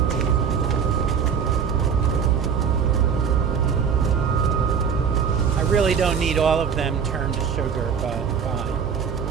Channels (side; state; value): left; quieter; 6.9 dB